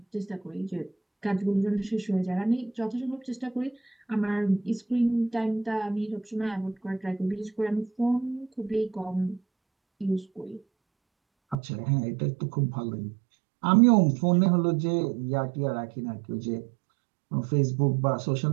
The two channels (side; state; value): left; drops out; at 11.6 s